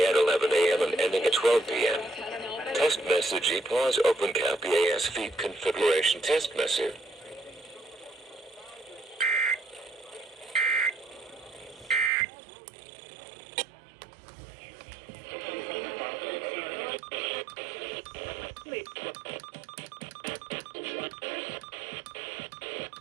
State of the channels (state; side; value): drops out; left; at 12.1 s